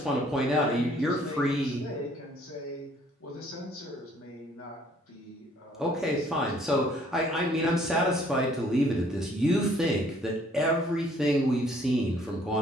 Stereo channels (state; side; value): normal; both; correlation 0.61